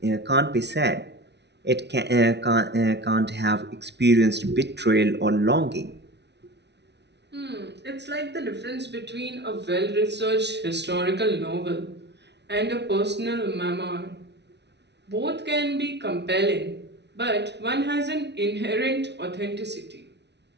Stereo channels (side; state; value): left; late; 0.50 ms